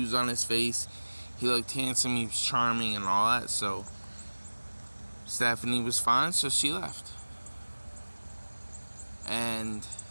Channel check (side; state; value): both; inverted; correlation -1.00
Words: on his face. He looked handsome, he was charming and all that, so Stephanie was fine, so she left. And